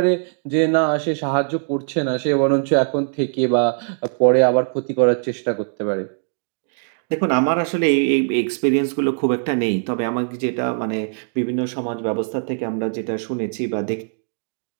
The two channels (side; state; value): left; silent; digital silence